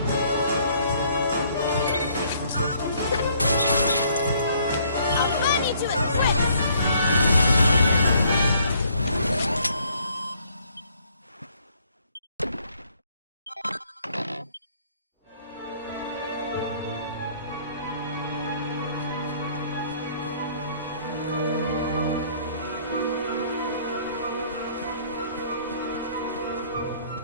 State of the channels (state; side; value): inverted; both; correlation -0.63